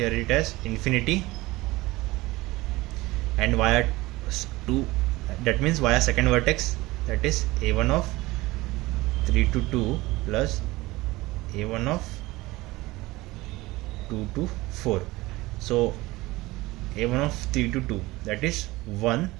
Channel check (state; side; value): quieter; left; 20.0 dB